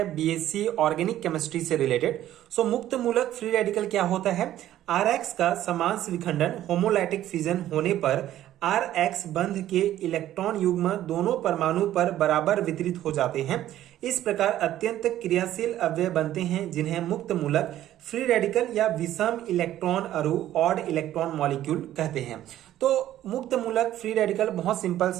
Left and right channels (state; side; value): quieter; left; 12.9 dB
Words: बीएससी ऑर्गेनिक केमिस्ट्री से रिलेटेड। सो मुक्त मूलक फ्री रेडिकल क्या होता है? Rx का समांश विखंडन होमोलाइटिक फिजन होने पर Rx बंध के इलेक्ट्रॉन युग्म दोनों परमाणु पर बराबर वितरित हो जाते हैं। इस प्रकार अत्यंत क्रियाशील अवयव बनते हैं जिन्हें मुक्त मूलक फ्री रेडिकल या विषम इलेक्ट्रॉन अणु ऑड इलेक्ट्रॉन मॉलिक्यूल कहते हैं। तो मुक्त मूलक फ्री रेडिकल बहुत सिंपल